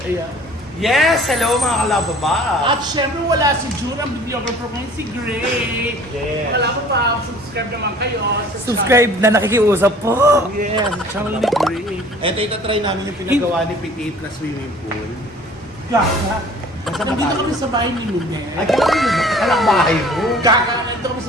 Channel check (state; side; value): normal; both; correlation 0.50